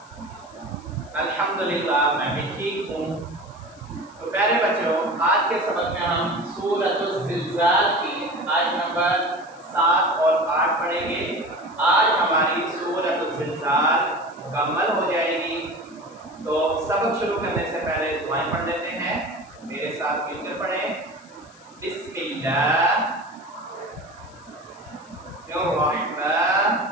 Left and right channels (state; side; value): noise; left; hiss, 26 dB below the sound